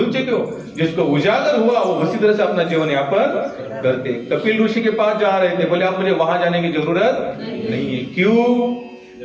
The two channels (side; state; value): both; identical; correlation 1.00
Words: चुके हो। जिसको उजागर हुआ वो उसी तरह से अपना जीवन यापन करते। कपिल ऋषि के पास जा रहे थे, बोले आप मुझे वहां जाने की जरूरत नहीं है। क्यों?